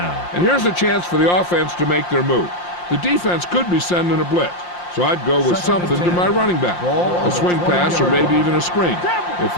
And here's a chance for the offense to make their move. The defense could be sending a blitz, so I'd go with something to my running back. A swing pass or maybe even a screen. If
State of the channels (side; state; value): right; late; 5.7 ms